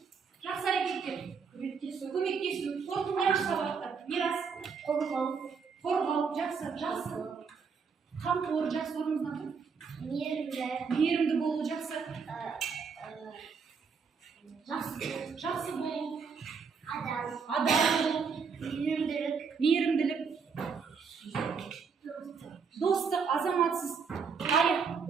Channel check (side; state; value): left; quieter; 5.7 dB